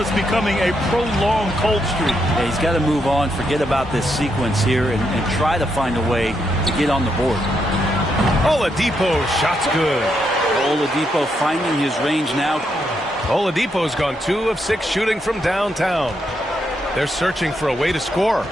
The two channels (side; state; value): both; normal; correlation 0.80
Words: becoming a prolonged cold streak. Yeah, he's got to move on, forget about this sequence here, and try to find a way to get on the board. Oladipo, shot's good. Oladipo finding his range now. Oladipo's gone 2 of 6 shooting from downtown. They're searching for a way to score.